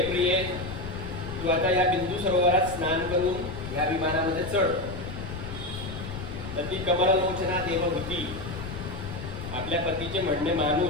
प्रिये, तू आता या बिंदू सरोवरात स्नान करून या विमानामध्ये चढ. तर ती कमललोचना देवहूती आपल्या पतीचे म्हणणे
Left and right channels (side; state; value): left; noise; rumble, 8 dB below the sound